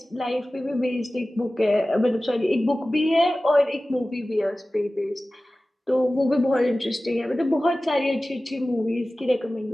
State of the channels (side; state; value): both; normal; correlation 0.96